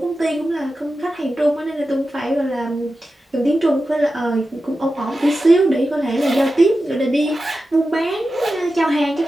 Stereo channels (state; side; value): normal; both; correlation 0.92